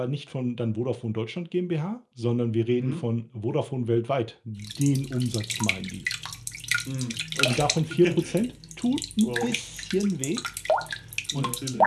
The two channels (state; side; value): identical; both; correlation 1.00